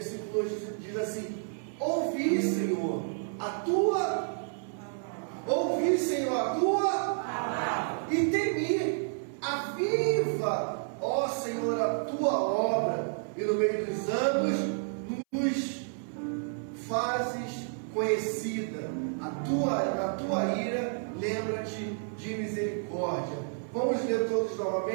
2 diz assim: Ouvi, Senhor, a tua palavra, e temi, aviva, ó Senhor, a tua obra, e no meio dos anos nos fazes conhecida. Na tua ira, lembra-te de misericórdia. Vamos ler todos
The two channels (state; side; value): silent; left; 57 dB below the other